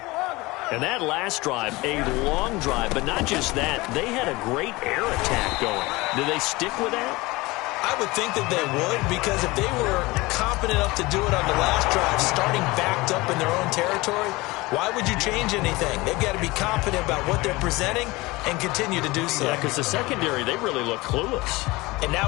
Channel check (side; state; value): right; quieter; 22.0 dB